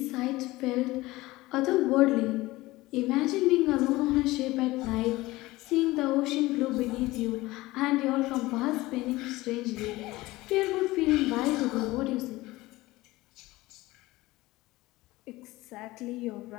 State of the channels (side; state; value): right; quieter; 19.2 dB